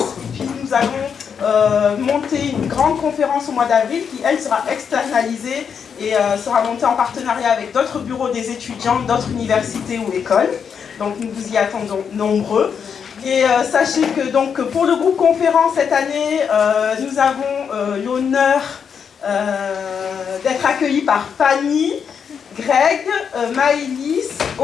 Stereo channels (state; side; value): quieter; right; 7.0 dB